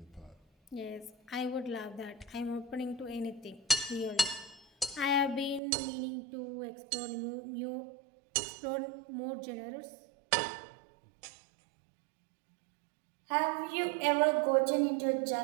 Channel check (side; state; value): left; drops out; at 5.6 s